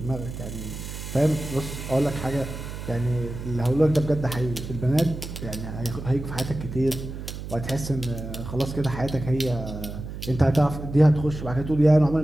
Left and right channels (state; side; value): noise; right; hum, 9 dB below the sound